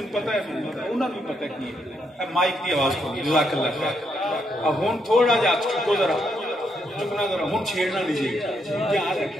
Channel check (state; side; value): normal; both; correlation 0.78